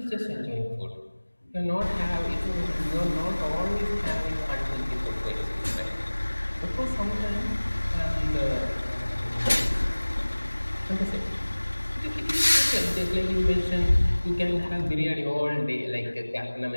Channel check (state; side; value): inverted; both; correlation -1.00